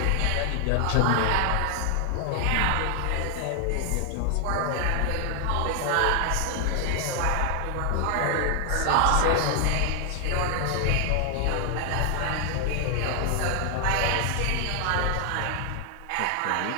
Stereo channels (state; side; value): different; both; correlation 0.00